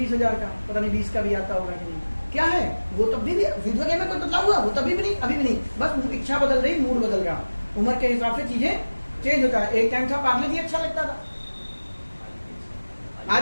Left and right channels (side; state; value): both; inverted; correlation -1.00